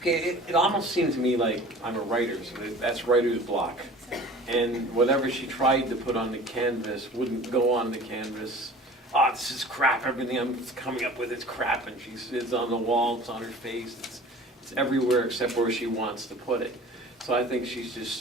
it almost seemed to me like I'm a writer, so that's writer's block. And whatever she tried to put on the canvas wouldn't go on the canvas. Oh, this is crap, everything I'm coming up with is crap, and it's on the wall, it's on her face, it's everywhere except where she wants to put it. So I think she's just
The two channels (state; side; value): normal; both; correlation 0.44